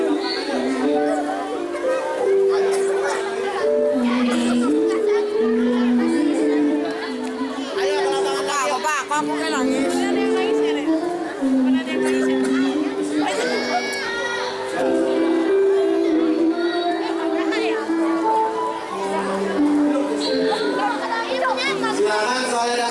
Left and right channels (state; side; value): identical; both; correlation 1.00